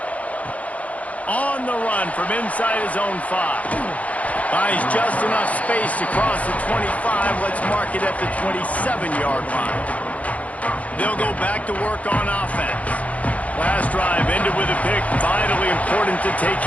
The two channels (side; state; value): right; late; 0.068 ms